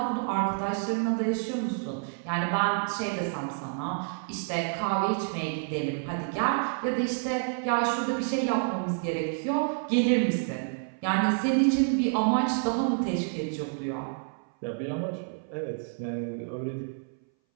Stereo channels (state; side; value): silent; left; 59 dB below the other